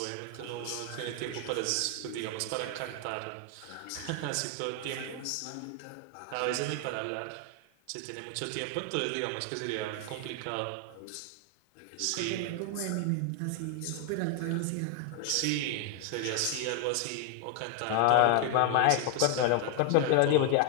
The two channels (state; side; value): different; both; correlation 0.00